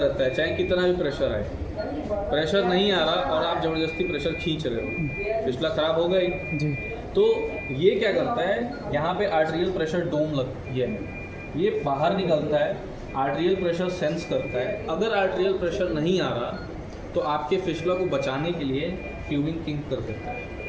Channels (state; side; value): identical; both; correlation 1.00